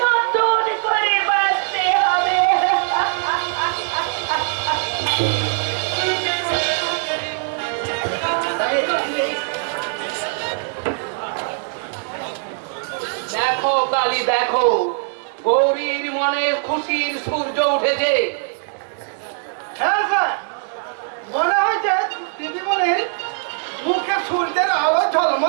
নতুন করে বাঁচতে হবে। দেখো কালী, দেখো গৌরীর মনে খুশির সূর্য উঠেছে। হ্যাঁ স্যার, মনে হয়েছে দিদিমণির মুখে সূর্যের আলো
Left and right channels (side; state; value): left; silent; 65 dB below the other